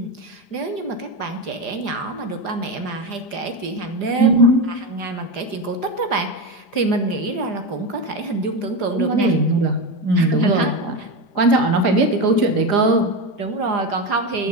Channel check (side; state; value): right; late; 4.9 ms